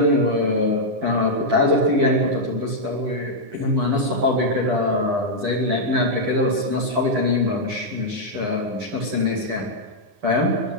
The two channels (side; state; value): left; late; 9.4 ms